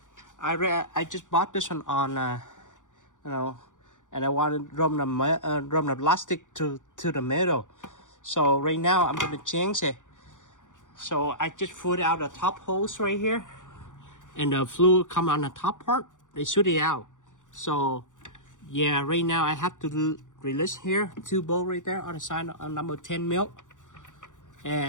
I just bought this one on and I wanted to run the plastic to the middle. So right now I'm going to change it. So I just put out the top hose right here, and the fluid come on the top part. They shoot it out. So yeah, right now I have to release here 2 bolts right there on the side on number 10 mil.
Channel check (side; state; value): right; late; 0.87 ms